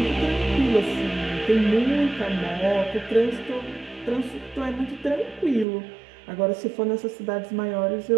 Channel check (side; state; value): left; drops out; at 5.7 s